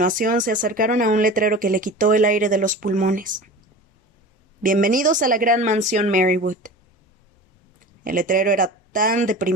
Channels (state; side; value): normal; both; correlation 0.35